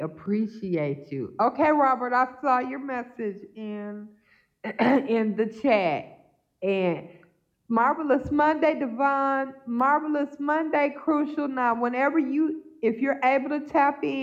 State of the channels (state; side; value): identical; both; correlation 1.00